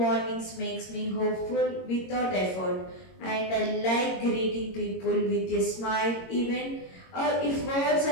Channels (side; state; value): right; late; 22 ms